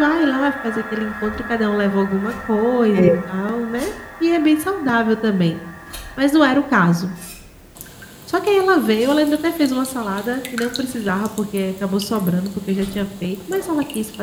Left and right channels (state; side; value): identical; both; correlation 1.00